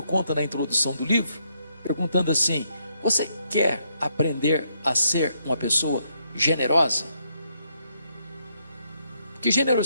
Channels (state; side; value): inverted; both; correlation -0.75